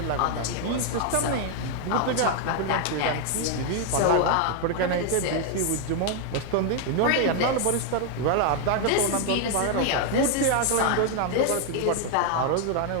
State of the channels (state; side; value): different; both; correlation 0.00